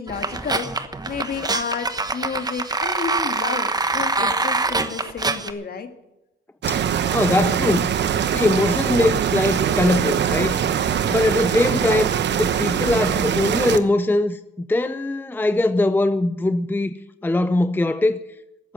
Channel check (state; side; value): normal; both; correlation 0.54